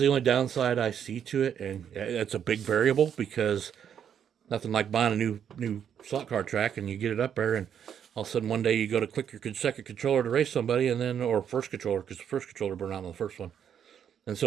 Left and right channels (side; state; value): left; quieter; 8.6 dB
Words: only downside I see to it, and it's a big variable, because nothing like buying a new slot car track and you get it up there, and all of a sudden one day you go to click your second controller to race somebody, and then, or first controller, because the first controller burned out on the first one, and